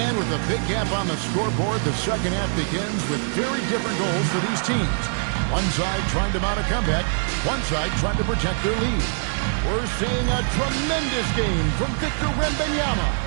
with a big gap on the scoreboard, the second half begins with very different goals for these teams. One side trying to mount a comeback, one side trying to protect their lead. We're seeing a tremendous game from Victor Wembanyama.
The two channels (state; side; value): silent; left; 63 dB below the other